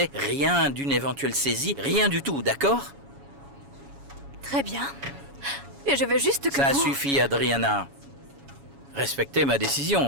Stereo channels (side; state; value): left; late; 7.2 ms